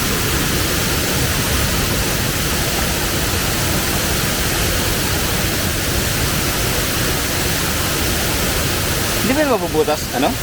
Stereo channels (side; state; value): both; identical; correlation 1.00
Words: Hindi ba mabubutas, ano?